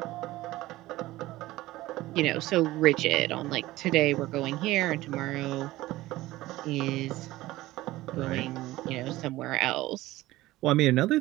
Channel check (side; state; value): left; quieter; 17.4 dB